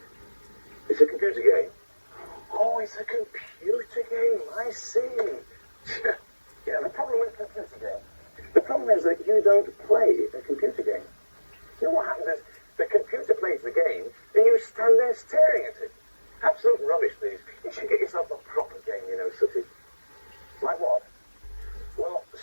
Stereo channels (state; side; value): inverted; both; correlation -1.00